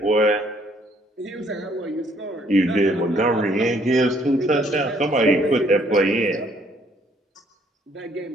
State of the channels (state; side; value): normal; both; correlation 0.64